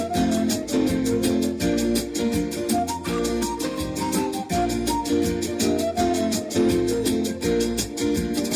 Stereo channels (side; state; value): both; identical; correlation 1.00